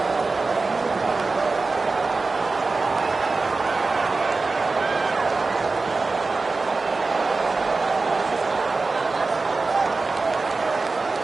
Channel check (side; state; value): left; quieter; 3.8 dB